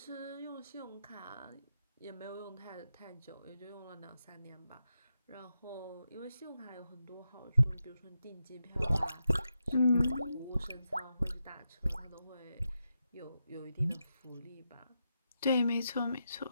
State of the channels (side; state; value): both; inverted; correlation -0.86